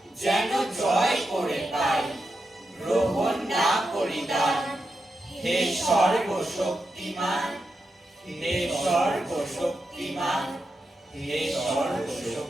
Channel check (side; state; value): both; normal; correlation 0.87